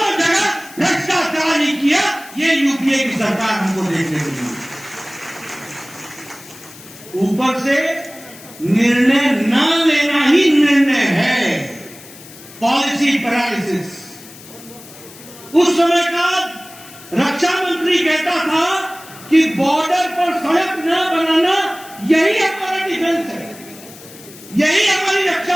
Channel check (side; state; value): left; noise; hiss, 19 dB below the sound